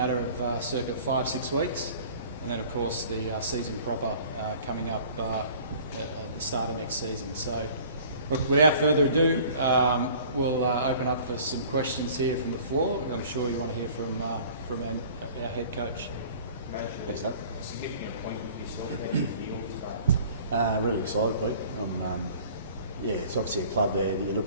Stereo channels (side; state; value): both; inverted; correlation -0.48